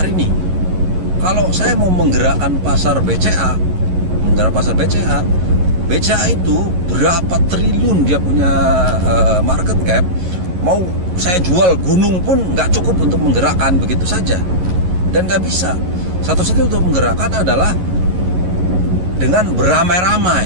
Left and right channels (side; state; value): left; late; 11 ms